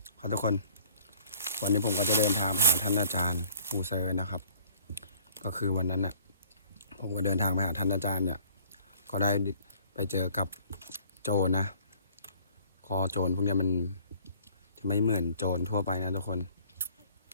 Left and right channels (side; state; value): both; inverted; correlation -0.55